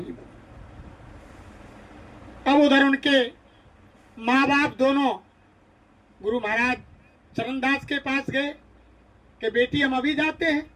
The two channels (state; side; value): identical; both; correlation 1.00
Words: बन। अब उधर उनके माँ बाप दोनों गुरु महाराज चरणदास के पास गए कि बेटी हम अभी जाते हैं।